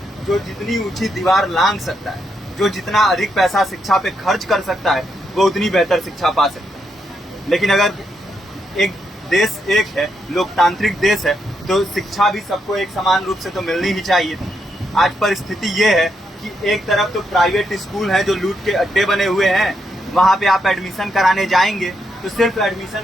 जो जितनी ऊंची दीवार लांघ सकता है, जो जितना अधिक पैसा शिक्षा पे खर्च कर सकता है, वो उतनी बेहतर शिक्षा पा सकता है। लेकिन अगर एक देश एक है, लोकतांत्रिक देश है, तो शिक्षा भी सबको एक समान रूप से तो मिलनी ही चाहिए। आज परिस्थिति ये है कि एक तरफ तो प्राइवेट स्कूल है जो लूट के अड्डे बने हुए हैं, वहां पे आप एडमिशन कराने जाएंगे तो सिर्फ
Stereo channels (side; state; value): both; normal; correlation 0.80